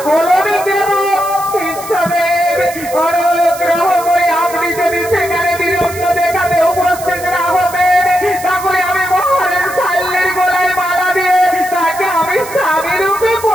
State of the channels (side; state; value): right; noise; hiss, 14 dB below the sound